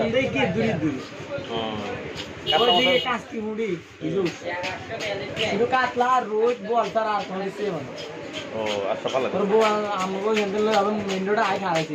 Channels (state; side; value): identical; both; correlation 1.00